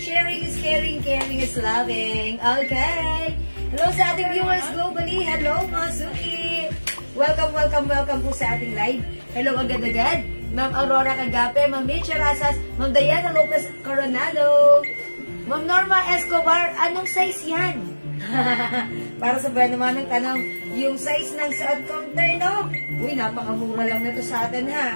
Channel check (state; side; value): inverted; both; correlation -1.00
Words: is caring, caring is loving. Okay. Hello sa ating viewers globally. Hello, mga Suki. Welcome, welcome, welcome po sa ating live. Hello agad-agad. Ma'am Aurora Cagape, Ma'am Mitch Rasas, Ma'am Diana Lopez Coronado, Ma'am Norma Escobar, anong size yan? Para sa ba naman ng tanong, yung size ng suot kong terno? Uy, napakamura lang na to sa atin